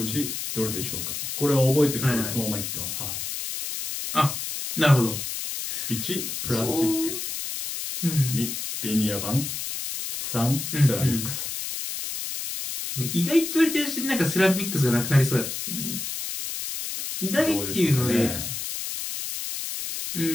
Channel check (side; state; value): left; noise; hiss, 5 dB below the sound